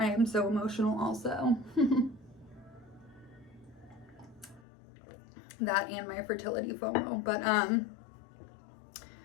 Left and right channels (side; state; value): right; drops out; at 4.7 s